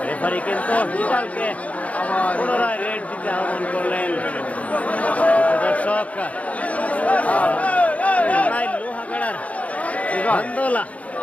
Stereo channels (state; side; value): late; right; 0.067 ms